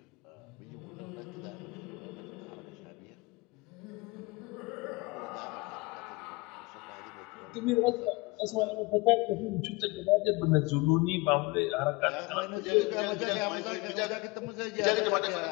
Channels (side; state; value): right; quieter; 24.5 dB